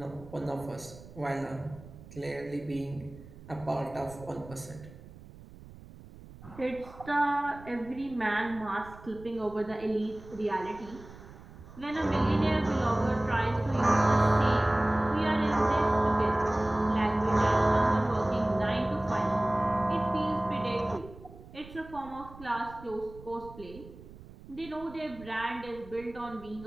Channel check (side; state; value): right; noise; rumble, 18 dB below the sound